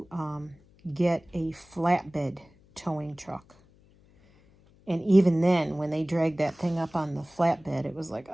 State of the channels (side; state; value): left; noise; hum, 29 dB below the sound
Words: get a flatbed towing truck. And even then, when they dragged that thing up on the flatbed, it was like,